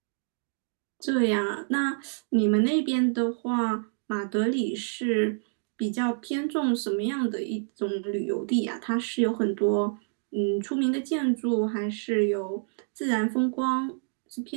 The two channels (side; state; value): left; silent; digital silence